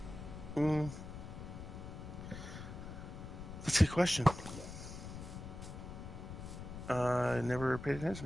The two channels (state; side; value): noise; left; rumble, 9 dB below the sound